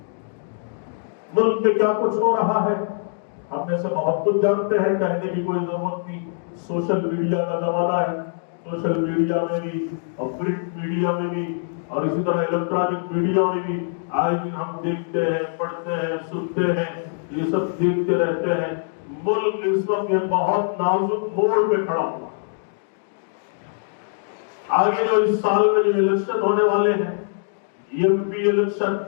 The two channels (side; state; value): right; silent; digital silence